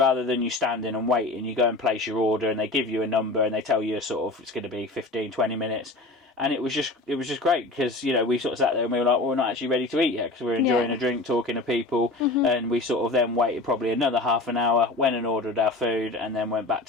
than you standing and waiting, you go and place your order, and they give you a number and they tell you sort of it's going to be 15-20 minutes. And it was just great, because, you know, we sort of sat there and we were like, well, we're not actually ready to eat yet, because we're enjoying a drink, talking to people. And we sort of then waited probably another half an hour, went and ordered our food, and then went back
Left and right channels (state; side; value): quieter; right; 3.0 dB